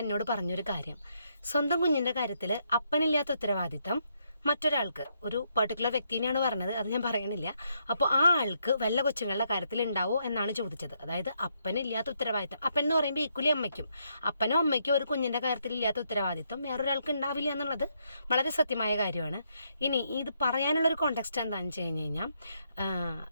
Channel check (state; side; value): inverted; both; correlation -0.76